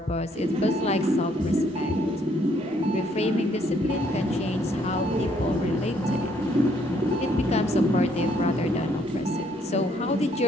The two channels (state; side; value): normal; both; correlation 0.68